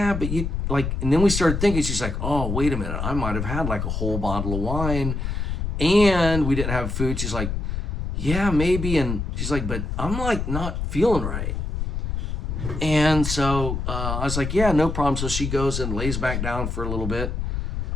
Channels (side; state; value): left; noise; rumble, 2 dB below the sound